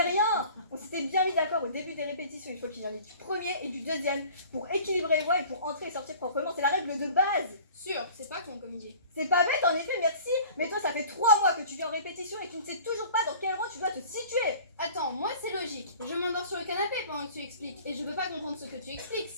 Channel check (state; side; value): inverted; both; correlation -0.46